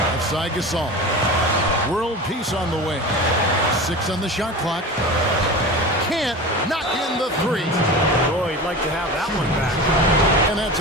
Offside Gasol. World peace on the way. 6 on the shot clock. Can't knock in the 3. Boy, he'd like to have that one back. And that's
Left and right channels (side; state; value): both; normal; correlation 0.31